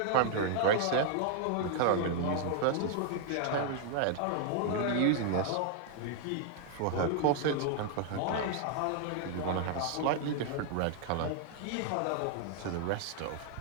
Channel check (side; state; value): both; different; correlation 0.00